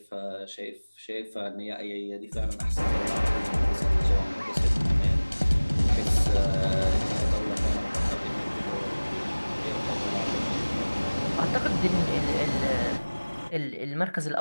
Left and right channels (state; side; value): inverted; both; correlation -1.00